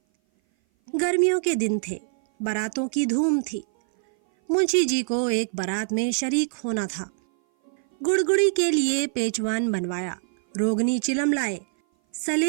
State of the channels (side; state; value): left; silent; 58 dB below the other